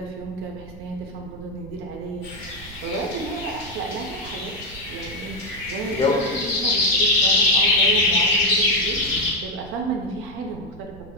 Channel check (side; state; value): right; noise; rumble, 17 dB below the sound